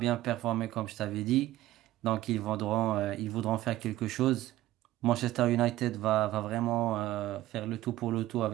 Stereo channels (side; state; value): left; quieter; 15.4 dB